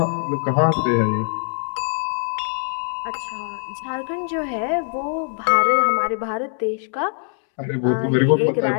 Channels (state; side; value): silent; right; digital silence